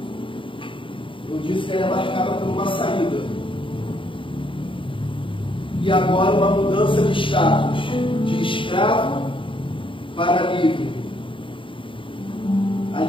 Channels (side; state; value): right; late; 0.25 ms